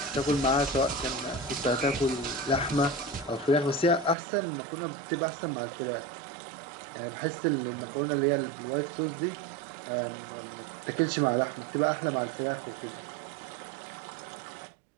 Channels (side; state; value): left; drops out; at 4.2 s